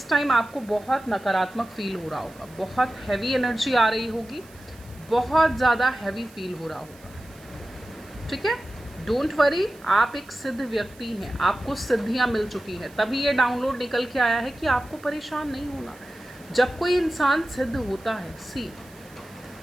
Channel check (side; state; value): right; noise; hiss, 25 dB below the sound